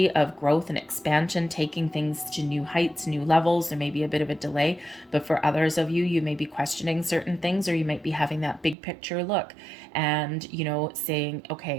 of growth and expansion, taking things to new heights, new levels. There may be a bit of a delay, but for others of you, you may be questioning certain things, or you might be having that big picture look and, saying,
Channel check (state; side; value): drops out; left; at 8.8 s